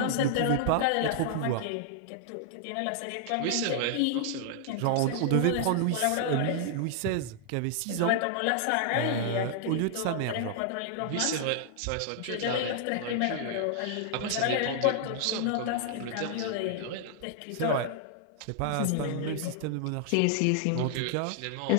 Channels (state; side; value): different; both; correlation -0.01